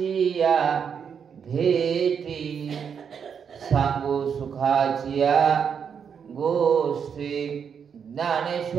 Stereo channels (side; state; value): left; quieter; 7.1 dB